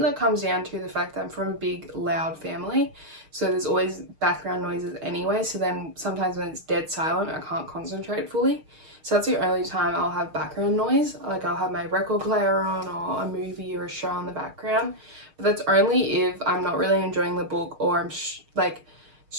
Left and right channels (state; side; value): late; left; 6.4 ms